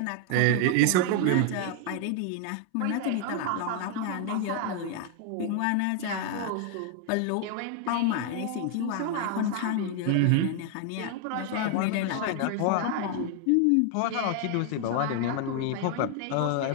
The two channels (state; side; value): different; both; correlation 0.00